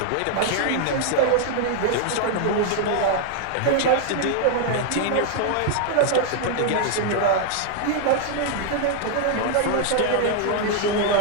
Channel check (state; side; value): different; both; correlation 0.00